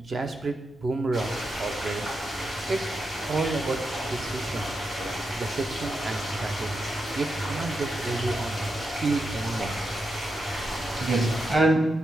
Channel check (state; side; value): normal; both; correlation 0.86